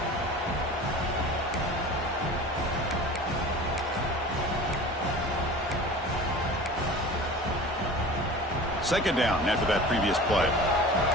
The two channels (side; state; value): both; normal; correlation 0.39